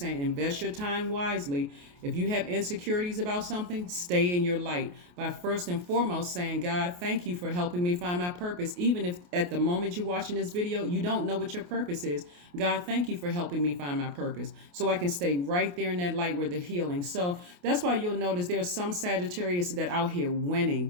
invest your time wisely. If you have insecurities about something, stay in your light by first and foremost saying, God, thank you for helping me find my purpose. Even if at the moment you're watching this video, you don't know what your purpose is. God, thank you for helping me find my purpose, so I can stay right there in that light where the healing. So that's why you'll notice there's some Sagittarius that out here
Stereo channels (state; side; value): late; left; 28 ms